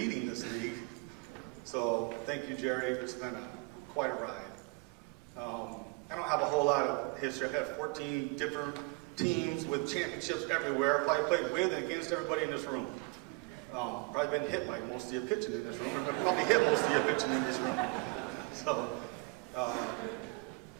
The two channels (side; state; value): left; quieter; 28.8 dB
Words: this league. So thank you, Jerry. It's been quite a ride. I don't have a whole lot of history. I've had 14 different teams with championships everywhere. I probably played with and against everybody in this room. Probably been hit by most of you pitching in this room. Or probably hit most of you pitching in this room. So,